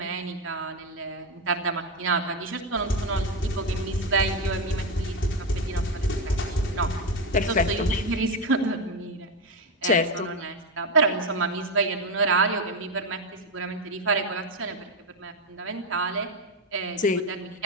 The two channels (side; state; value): both; normal; correlation 0.10